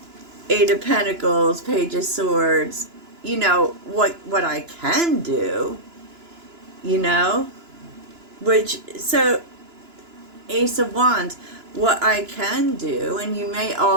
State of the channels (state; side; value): late; left; 2.9 ms